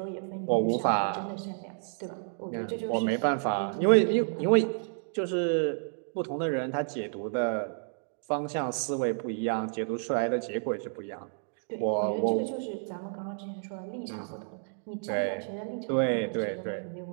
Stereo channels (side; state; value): left; silent; digital silence